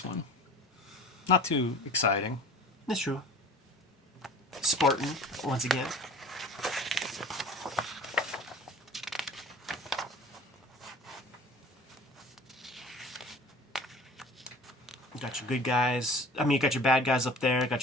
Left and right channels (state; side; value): normal; both; correlation 0.43